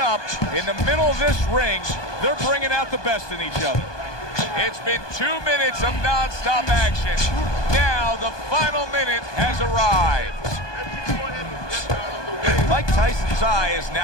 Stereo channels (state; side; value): late; right; 1.2 ms